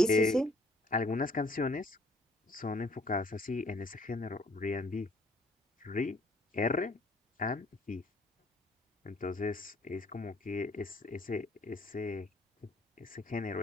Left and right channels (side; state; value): both; normal; correlation 0.61